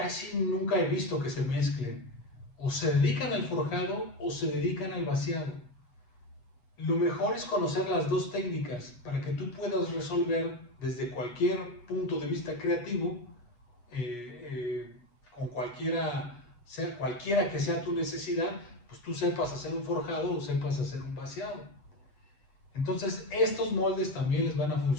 nunca he visto que se mezclen. O se dedican al forjado o se dedican al vaciado. Lo mejor es conocer las dos técnicas para que tú puedas resolver desde cualquier punto de vista creativo, con cualquiera que sea tu necesidad, pues tú sepas hacer un forjado o sepas hacer un vaciado. Entonces estos moldes también les van a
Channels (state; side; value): late; right; 8.3 ms